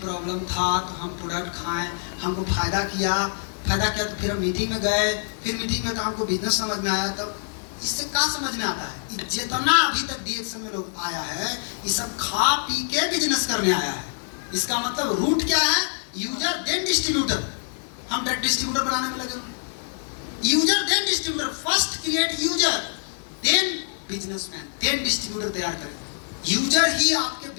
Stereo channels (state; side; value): silent; right; digital silence